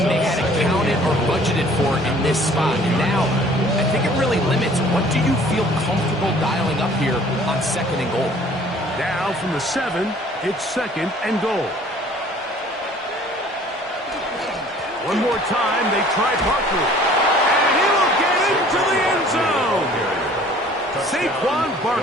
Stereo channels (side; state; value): both; normal; correlation 0.53